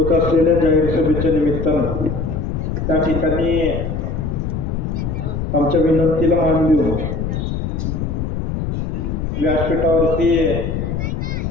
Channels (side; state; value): left; noise; rumble, 2 dB below the sound